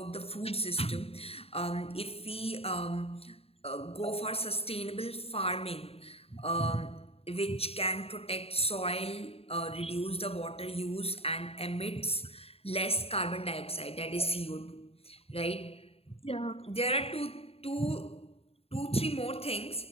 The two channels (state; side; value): late; right; 0.29 ms